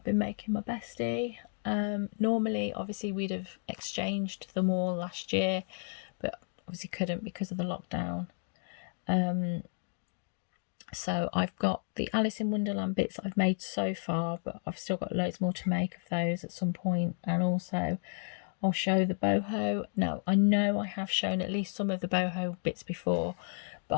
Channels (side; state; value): right; silent; digital silence